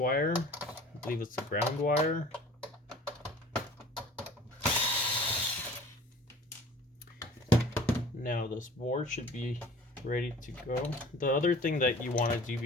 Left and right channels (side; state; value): both; normal; correlation 0.46